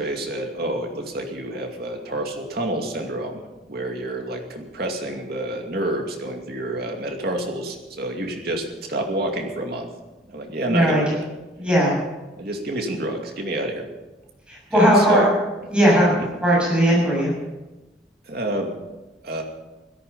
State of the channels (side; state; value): both; normal; correlation 0.50